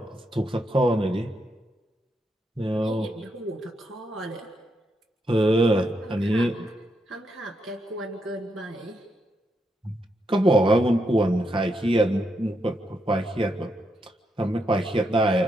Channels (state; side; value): normal; both; correlation 0.81